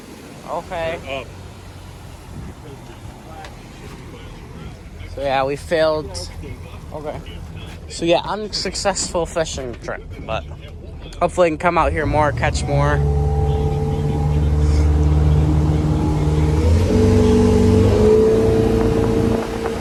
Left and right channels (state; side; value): identical; both; correlation 1.00